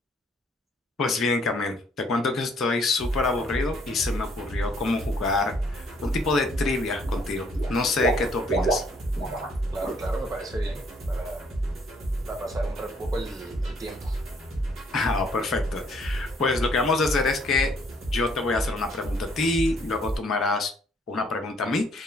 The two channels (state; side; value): normal; both; correlation 0.65